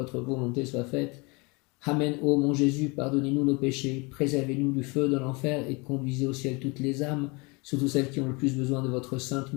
volonté soit faite. Amen. Ô mon Jésus, pardonnez-nous nos péchés, préservez-nous du feu de l'enfer et conduisez au ciel toutes les âmes, surtout celles qui ont le plus besoin de votre sainte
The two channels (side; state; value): right; quieter; 28.0 dB